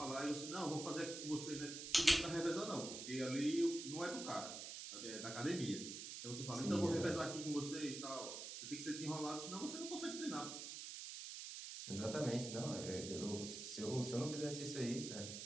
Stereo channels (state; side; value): noise; right; hiss, 7 dB below the sound